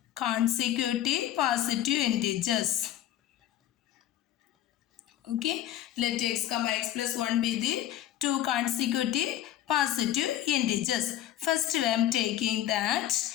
Consecutive positive integers. Okay, let X comma X plus 1 be the two consecutive positive integers. First, I am taking that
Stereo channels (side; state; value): right; quieter; 12.2 dB